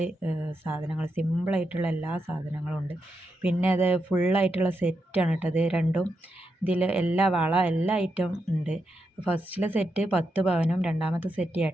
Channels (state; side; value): normal; both; correlation 0.84